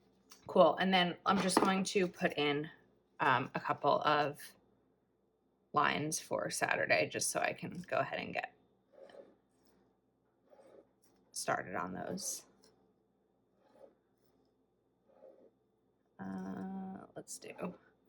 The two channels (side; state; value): both; identical; correlation 1.00